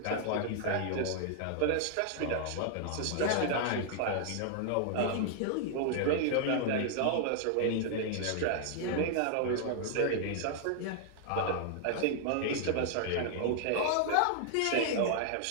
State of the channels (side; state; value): both; different; correlation 0.00